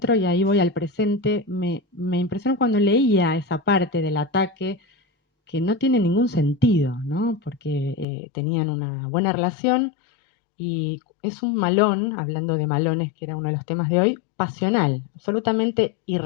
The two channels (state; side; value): drops out; right; at 8.1 s